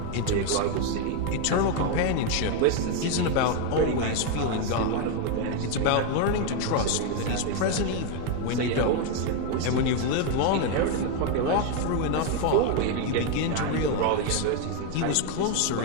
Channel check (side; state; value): both; different; correlation 0.01